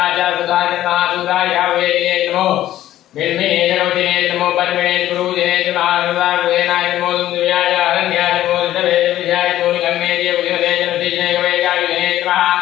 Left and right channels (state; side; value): quieter; right; 13.4 dB